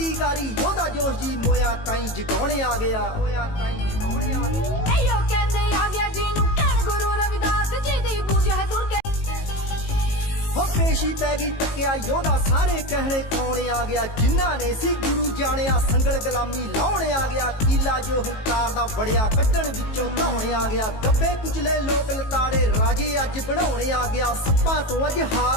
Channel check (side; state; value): right; late; 18 ms